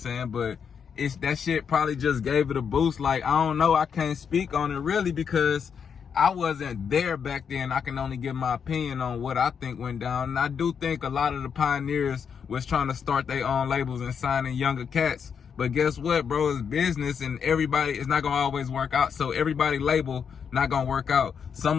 But that shit probably just gave it a boost. Like, I don't know, I can't speak on it really because I wasn't there back then. I can only give my opinion on what I think went down. And I do think a lot of the pioneers was trying to start their own labels and signing younger cats. But guess what, bro? It's business, and everybody, it's not gonna always work out. So everybody label not gonna work out.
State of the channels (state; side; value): quieter; right; 6.9 dB